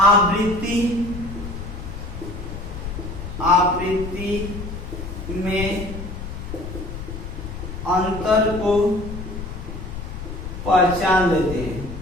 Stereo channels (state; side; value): noise; left; rumble, 8 dB below the sound